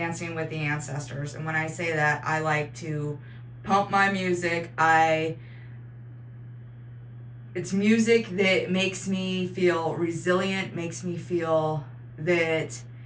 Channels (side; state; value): both; identical; correlation 1.00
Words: with the ancestors. And when I say that, I like to pump my music. It's music that makes me feel resilient, makes me feel that